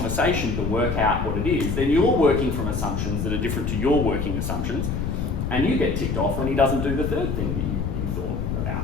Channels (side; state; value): left; noise; rumble, 2 dB below the sound